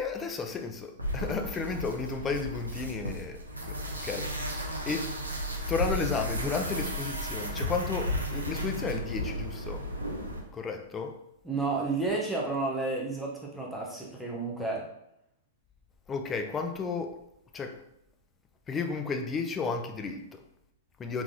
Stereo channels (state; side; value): normal; both; correlation 0.08